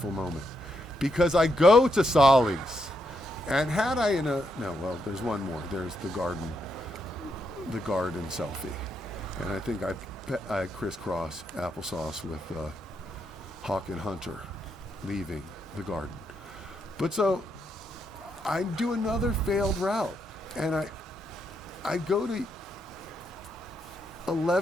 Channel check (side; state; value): both; normal; correlation 0.80